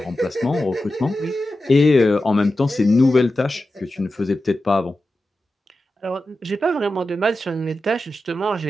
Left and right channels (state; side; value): normal; both; correlation 0.92